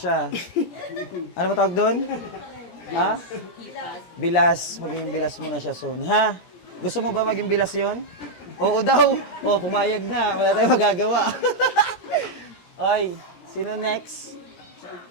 Ano ba tawag doon? Ha? Bilas. Magiging bilas mo na siya soon. Ha? Gusto mo ba maging bilas yon? Oo daw. Oo, pumayag na. Wala tayong magagawa. Ay, sino next?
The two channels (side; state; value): right; late; 17 ms